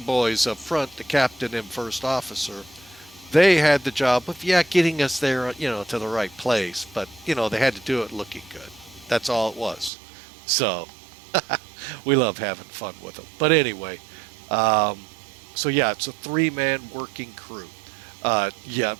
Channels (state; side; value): drops out; left; at 9.9 s